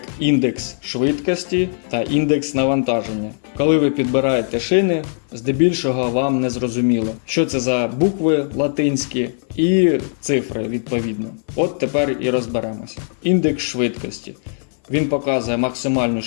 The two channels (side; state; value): right; silent; 58 dB below the other